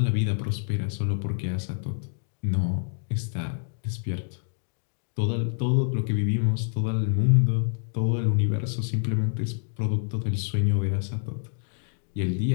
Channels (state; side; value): silent; right; 60 dB below the other